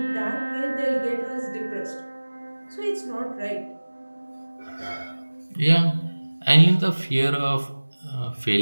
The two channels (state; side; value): inverted; both; correlation -1.00